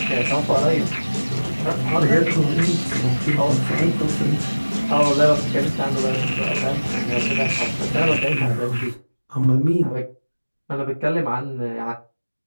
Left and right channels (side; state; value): both; inverted; correlation -1.00